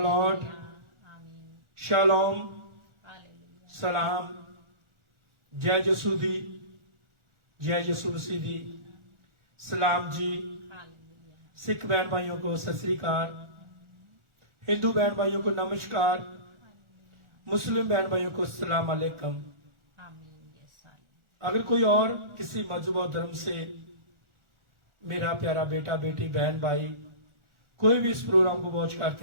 Lord, shalom, सलाम, जय यसू दी, जय यसू मसीह दी, सलाम जी। सिख बहन भाइयों को सत श्री अकाल, हिंदू बहन भाइयों को नमस्कार, मुस्लिम बहन भाइयों को सलाम अलैकुम। अगर कोई और किसी मजहब और धर्म से मेरा प्यारा बेटा बेटी बहन भाई कोई भी इस प्रोग्राम को वॉच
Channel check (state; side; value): late; left; 1.4 ms